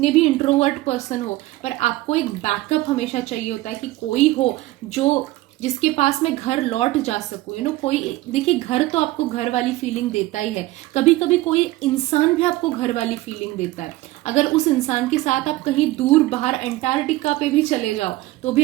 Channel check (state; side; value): quieter; left; 17.9 dB